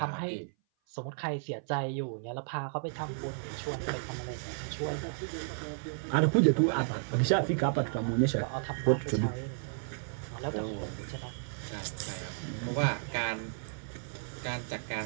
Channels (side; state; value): left; silent; 56 dB below the other